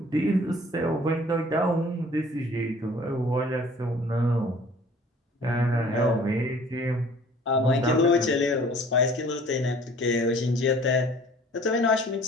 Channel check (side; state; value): both; normal; correlation 0.51